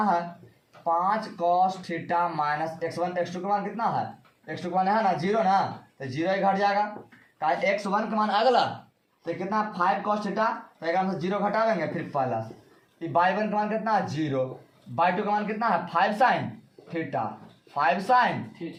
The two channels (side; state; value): both; identical; correlation 1.00